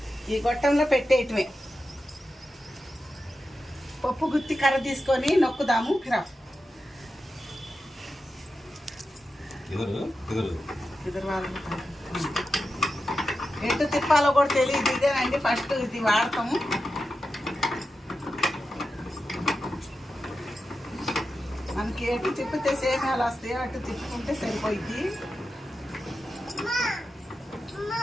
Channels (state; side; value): normal; both; correlation 0.90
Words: ఈ గొట్టంలో పెట్టేయటమే. పప్పు గుత్తి కర్ర తీసుకొని నొక్కుదాము. ఎటు తిప్పాలో కూడా తెలియదు. ఇదేనండి ఫస్ట్ ఇది వాడతాము. మనకి ఎటు తిప్పితే సేమియాలు వస్తాయో అటు తిప్పుకుంటే సరిపోయింది.